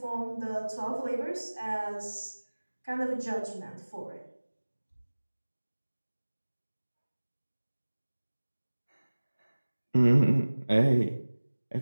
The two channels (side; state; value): both; inverted; correlation -1.00